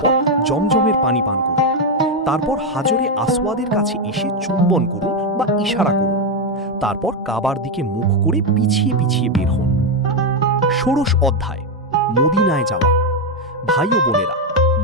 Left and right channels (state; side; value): normal; both; correlation 0.05